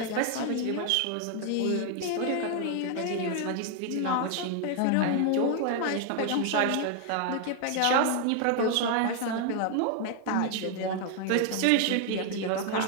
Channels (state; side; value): different; both; correlation 0.00